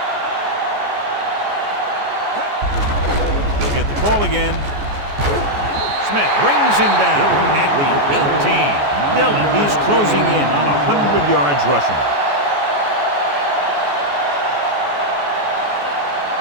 He'll get the call again. Smith brings him down at the 18. Dillon, he's closing in on 100 yards rushing.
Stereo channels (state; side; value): late; left; 14 ms